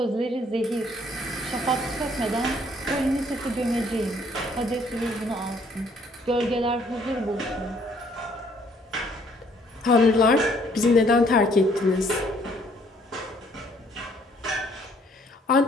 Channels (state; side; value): normal; both; correlation 0.63